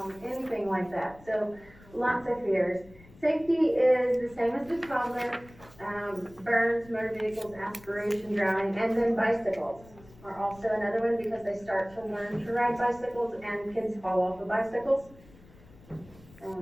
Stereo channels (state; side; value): noise; left; rumble, 23 dB below the sound